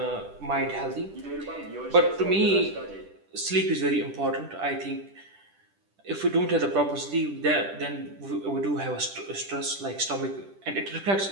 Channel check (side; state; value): left; late; 10 ms